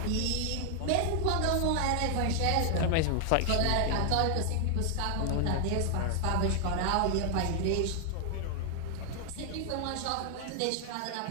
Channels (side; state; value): both; different; correlation 0.00